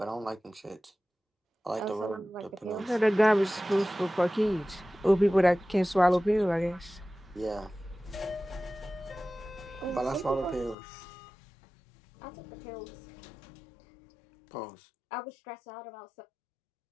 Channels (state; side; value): drops out; right; at 10.8 s